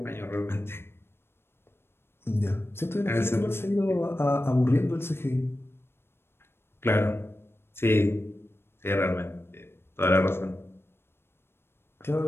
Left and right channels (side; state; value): right; late; 0.12 ms